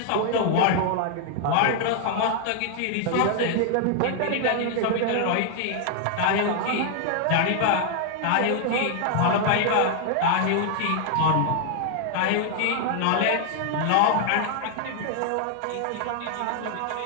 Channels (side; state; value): both; different; correlation 0.00